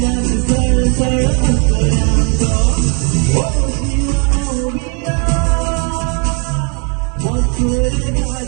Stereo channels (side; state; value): left; quieter; 37.7 dB